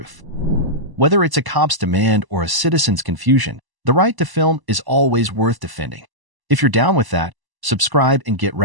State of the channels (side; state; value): left; late; 1.0 ms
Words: Whether it's a cop's demand or a citizen's confusion, the right to film is always worth defending. If you're down with that, subscribe and get